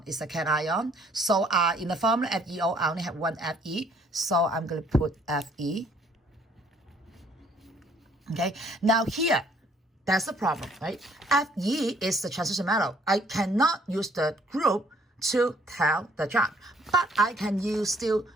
cation. So in the formula FeO, I only have one Fe. So I'm going to put Fe. Okay, now here, that's the problem, right? Fe is the transition metal. I cannot use the group to tell the charge, but I can still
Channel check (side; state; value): both; normal; correlation 0.62